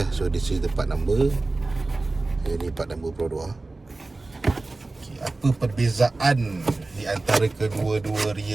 So, this is the part number. Ini part number Pro 2. Okay, apa perbezaan di antara kedua-dua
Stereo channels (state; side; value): quieter; left; 3.2 dB